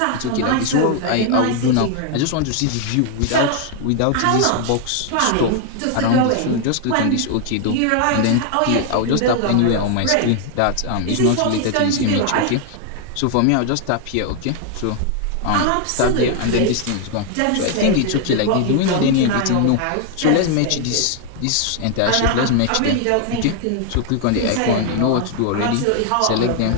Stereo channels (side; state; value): both; different; correlation 0.00